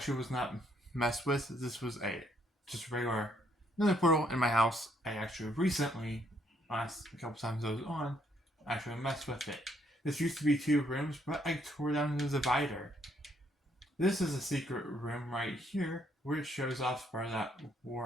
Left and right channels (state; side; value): normal; both; correlation 0.70